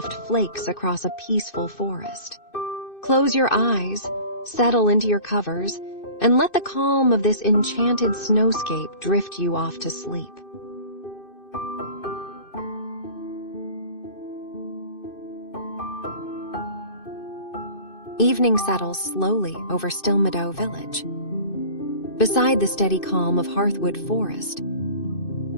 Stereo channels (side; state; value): right; late; 2.6 ms